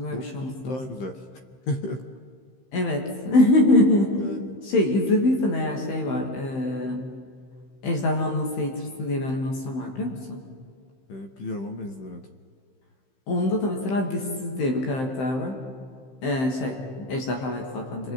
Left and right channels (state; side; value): late; right; 15 ms